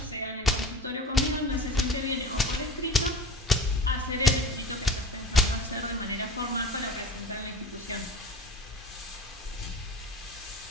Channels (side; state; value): both; normal; correlation 0.36